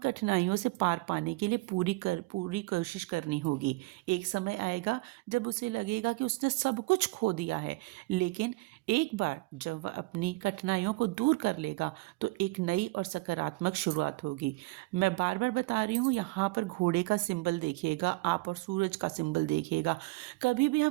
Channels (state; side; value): quieter; left; 23.1 dB